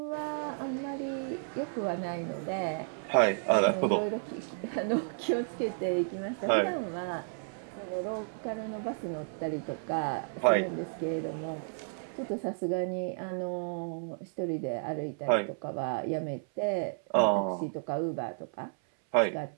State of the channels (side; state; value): left; silent; 56 dB below the other